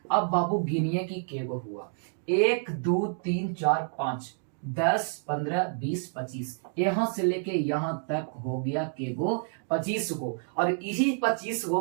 अब बाबू गिनिए कि केगो हुआ। 1 2 3 4 5 10 15 20 25, यहाँ से लेके यहाँ तक हो गया केगो? 25 गो। और इसी 25 गो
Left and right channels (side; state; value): left; silent; 59 dB below the other